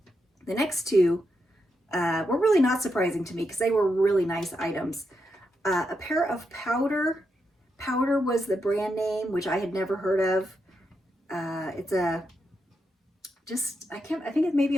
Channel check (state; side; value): normal; both; correlation 0.84